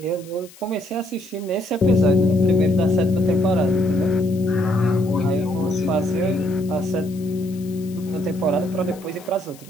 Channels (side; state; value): left; noise; hiss, 23 dB below the sound